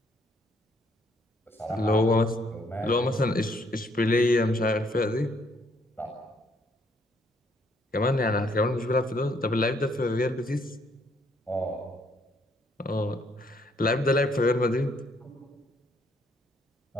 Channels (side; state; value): both; normal; correlation 0.68